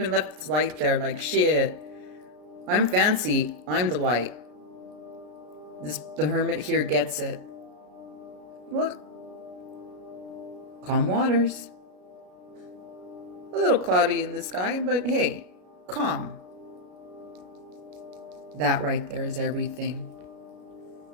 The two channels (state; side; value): late; left; 33 ms